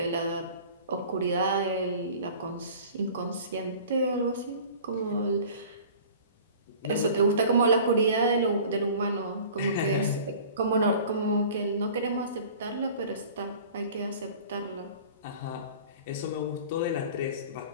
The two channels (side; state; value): both; inverted; correlation -0.44